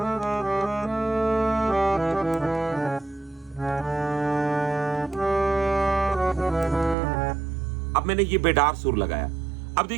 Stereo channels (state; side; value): drops out; left; at 7.0 s